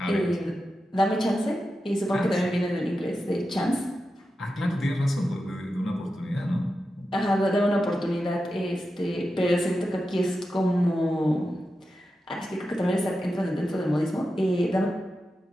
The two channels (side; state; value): both; normal; correlation 0.90